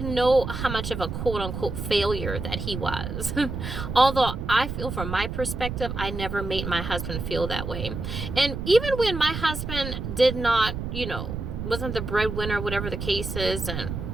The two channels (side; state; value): right; noise; rumble, 5 dB below the sound